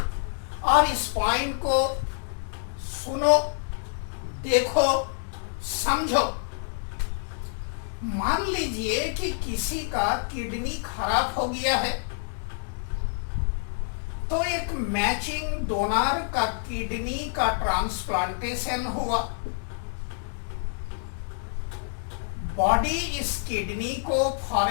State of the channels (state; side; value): silent; right; digital silence